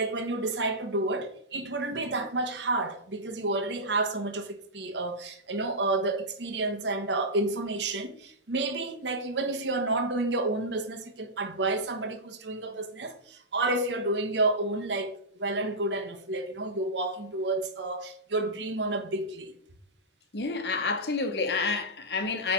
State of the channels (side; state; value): both; normal; correlation -0.11